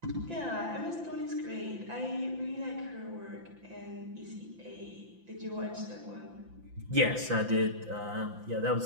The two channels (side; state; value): left; late; 5.9 ms